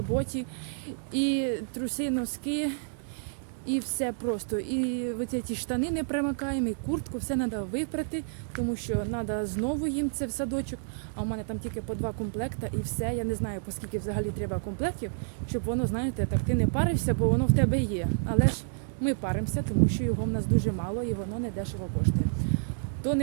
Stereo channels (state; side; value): silent; left; digital silence